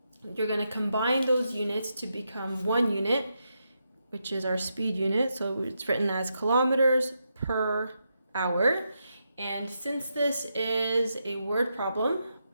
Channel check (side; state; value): both; inverted; correlation -0.83